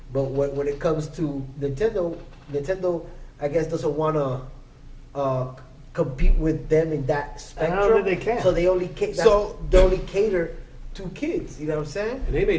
But when it comes to Nintendo, I guess doesn't want to compete with them in that I spectrum. don't think they can. So they only they only cater to kids. You know what I'm saying? And they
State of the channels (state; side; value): identical; both; correlation 1.00